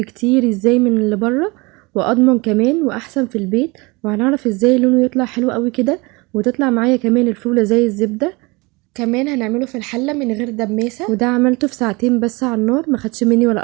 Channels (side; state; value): left; quieter; 25.8 dB